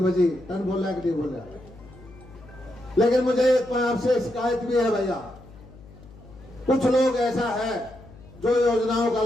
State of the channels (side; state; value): left; noise; hum, 21 dB below the sound